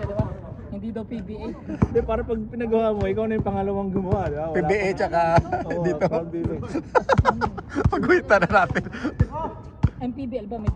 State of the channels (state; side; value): identical; both; correlation 1.00